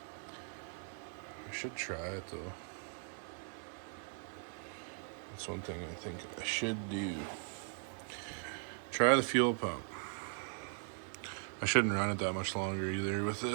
I should try it though. That's one thing I think I should do. Try the fuel pump. I shouldn't run it that much longer either with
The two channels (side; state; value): left; silent; 52 dB below the other